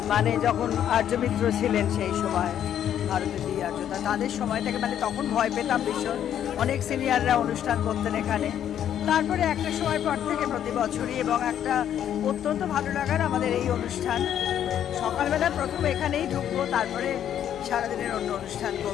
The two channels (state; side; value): quieter; right; 10.1 dB